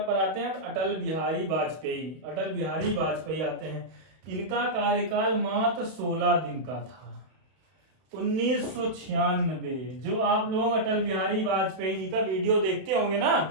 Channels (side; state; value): left; late; 32 ms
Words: पर आते हैं अटल बिहारी वाजपेयी आते हैं। इनका कार्यकाल मात्र 16 दिन का था। 1996, जो आप लोग अटल बिहारी वाजपेयी जी का वीडियो देखते होंगे